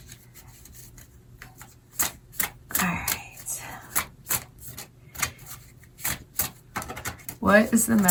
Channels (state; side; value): identical; both; correlation 1.00